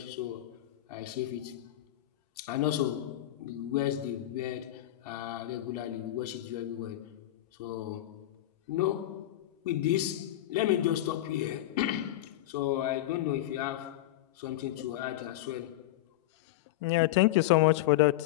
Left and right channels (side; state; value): right; quieter; 14.8 dB